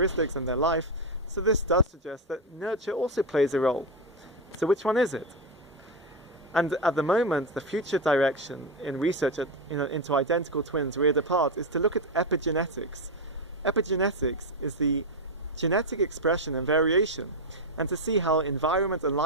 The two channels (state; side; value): normal; both; correlation 0.08